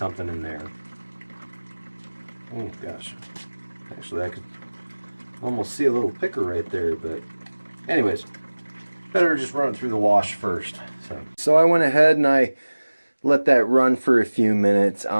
in there. Oh gosh. Actually, I could almost see a little picker right there, but anyways, better just run it through the wash first. So I went ahead and I let that run for a few minutes.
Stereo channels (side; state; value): both; inverted; correlation -1.00